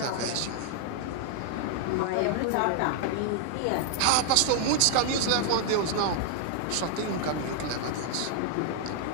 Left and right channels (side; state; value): both; different; correlation 0.00